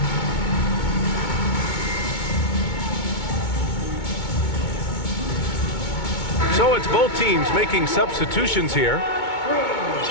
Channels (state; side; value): late; right; 2.2 ms